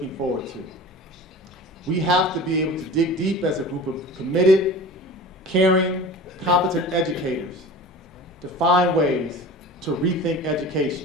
forward to. We have to be able to dig deep as a group of committed, caring, competent educators to find ways to rethink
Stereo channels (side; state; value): both; normal; correlation 0.37